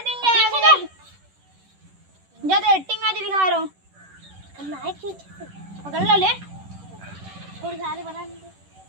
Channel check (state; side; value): late; left; 11 ms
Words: देंगे ज्यादा एक्टिंग आज दिखा रहा हूं करना है कि पकड़ लो ले थोड़ी सारे बना दे